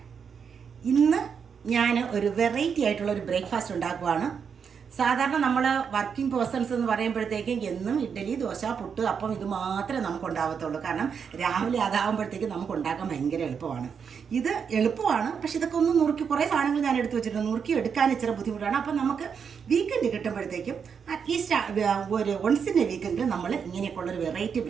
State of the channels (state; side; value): quieter; left; 6.7 dB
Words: ഇന്ന് ഞാൻ ഒരു വെറൈറ്റി ആയിട്ടുള്ള ഒരു ബ്രേക്ക്ഫാസ്റ്റ് ഉണ്ടാക്കുവാണ്. സാധാരണ നമ്മൾ വർക്കിംഗ് പേഴ്സൺസ് എന്ന് പറയുമ്പോഴത്തേക്കും എന്നും ഇഡ്ഡലി, ദോശ, പുട്ട്, അപ്പം ഇത് മാത്രമേ നമുക്ക് ഉണ്ടാവത്തുള്ളൂ. കാരണം രാവിലെ അതാകുമ്പോഴത്തേക്കും നമുക്ക് ഉണ്ടാക്കാൻ ഭയങ്കര എളുപ്പമാണ്. ഇത് എളുപ്പമാണ്, പക്ഷെ ഇതൊക്കെ ഒന്ന് നുറുക്കി കുറേ സാധനങ്ങൾ ഞാൻ എടുത്തു വെച്ചിട്ടുണ്ട്. നുറുക്കി എടുക്കാൻ ഇച്ചിരി ബുദ്ധിമുട്ടാണ്. അപ്പം നമുക്ക് വീക്കെൻഡ് കിട്ടുമ്പോഴത്തേക്കും അറ്റ്ലീസ്റ്റ് ഒരു വൺസിൻ്റെ വീക്കെൻഡിൽ നമ്മൾ ഇങ്ങനെയൊക്കെയുള്ളൊരു വെറൈറ്റി